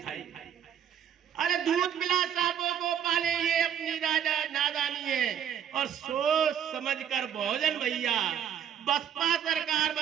अरे दूध पिला सांपों को पाले, ये अपनी नादानी है। और सोच समझ कर बहुजन भैया बसपा सरकार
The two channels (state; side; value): quieter; left; 9.1 dB